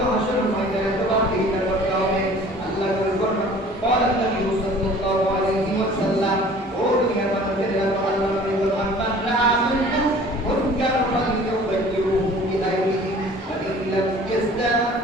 হাসরের ময়দানে জবাবদিহিতা করতে হবে। আল্লাহ বলেন قال النبي صلى الله عليه وسلم ও দুনিয়ার মানুষের আল্লাহ নবী বলেন মান রাআ মিনকুম মুনকার ফালইউগাইয়িরহু বিয়াদিহি ওয়া ইন লাম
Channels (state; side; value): normal; both; correlation 0.48